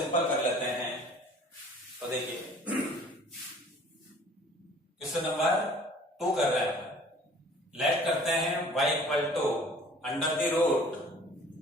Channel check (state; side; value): normal; both; correlation 0.50